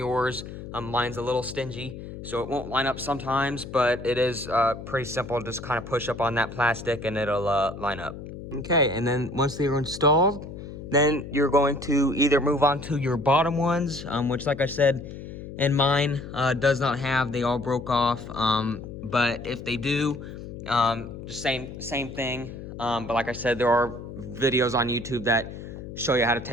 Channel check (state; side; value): noise; left; hum, 11 dB below the sound